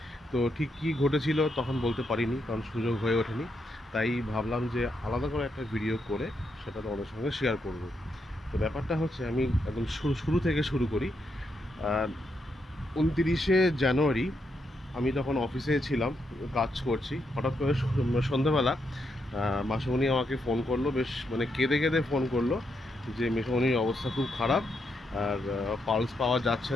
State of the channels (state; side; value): normal; both; correlation 0.80